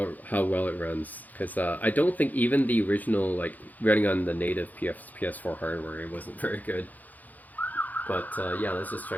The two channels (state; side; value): late; right; 0.081 ms